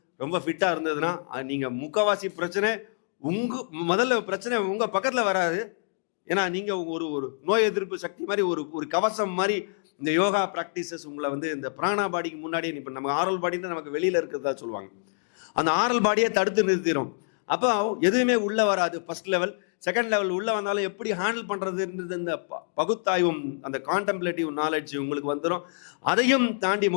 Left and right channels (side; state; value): right; silent; digital silence